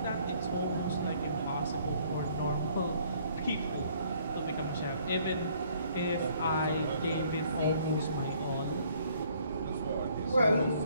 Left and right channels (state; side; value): inverted; both; correlation -0.62